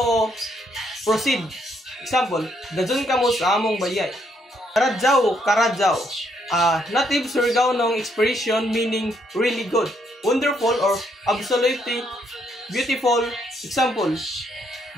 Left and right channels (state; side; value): normal; both; correlation 0.73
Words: proceed. Example, dazun kamo sa among bayay. Karadjaw. Native Surigao expression meaning really good, wonderful, or absolutely beautiful. Example,